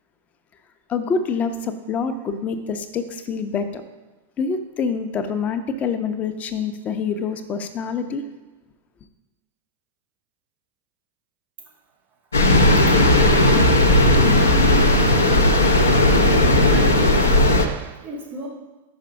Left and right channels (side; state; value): both; inverted; correlation -0.30